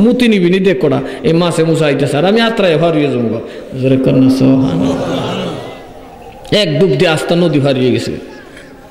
মুতি নিবি নি দেখ কটা এই মাছে মুসা আইতেছে আর আমি আত্রায় হারিয়ে যাবো জোরে কর না সুবহানাল্লাহ এক ডুব দিয়ে আস্তা নদী হারিয়ে গেছে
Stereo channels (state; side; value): identical; both; correlation 1.00